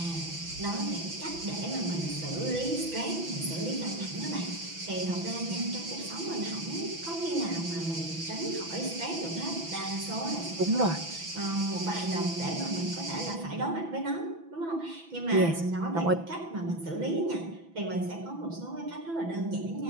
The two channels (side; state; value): left; late; 6.0 ms